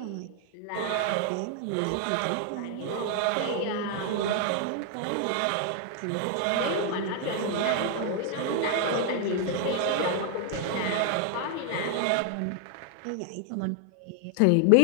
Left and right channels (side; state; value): both; different; correlation 0.00